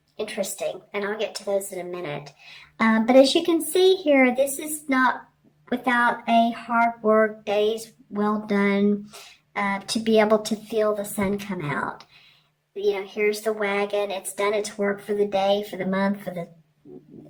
Interesting. And I'll get to those in a minute. But as you can see here, this is not without a hard work, days well done, to be able to feel the sun come out. Here's the wagon. It's done its work for the day, for the month, for the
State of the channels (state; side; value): identical; both; correlation 1.00